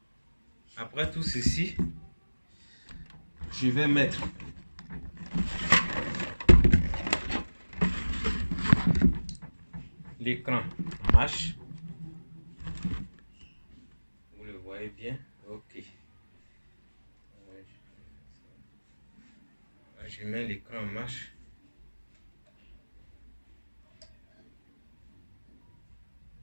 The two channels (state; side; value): inverted; both; correlation -1.00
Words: Après tout ceci, je vais mettre l'écran en marche. Vous le voyez bien. Ok. Je mets l'écran en marche.